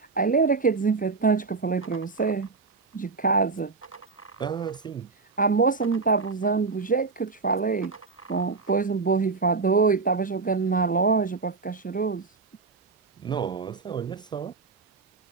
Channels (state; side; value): quieter; left; 4.3 dB